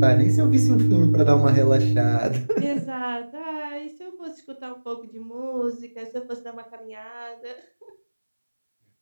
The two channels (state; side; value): inverted; both; correlation -1.00